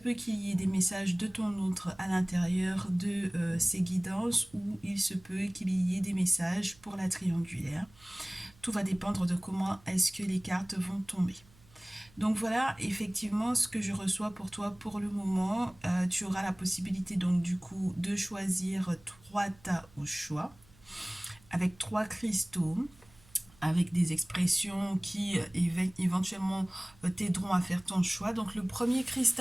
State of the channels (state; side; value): noise; right; hum, 27 dB below the sound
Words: qu'il y ait des messages de ton autre à l'intérieur de ces guidances ou il se peut qu'il y ait des messages pour la triangulaire. Tout va dépendre de comment est-ce que les cartes vont tomber. Donc voilà effectivement ce que je reçois pour toi pour le moment. Tu auras la possibilité donc du coup de choisir 3 tas au choix avec 3 cristaux avec des expressions qui éventuellement t'aideront à faire ton choix. Donc le premier